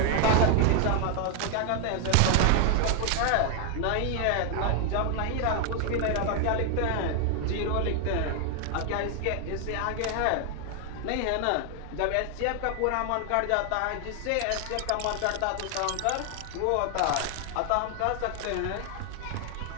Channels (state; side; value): different; both; correlation 0.00